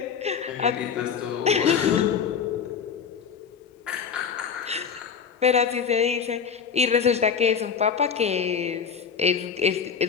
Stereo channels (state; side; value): quieter; right; 6.7 dB